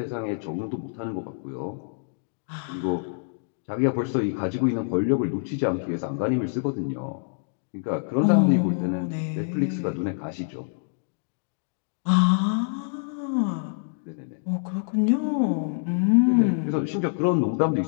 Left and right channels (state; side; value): silent; right; digital silence